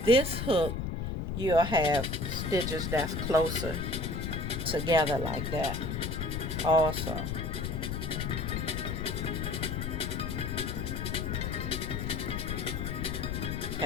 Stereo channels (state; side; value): noise; left; rumble, 2 dB below the sound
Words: this hook, you'll have stitches that's closer together like that also.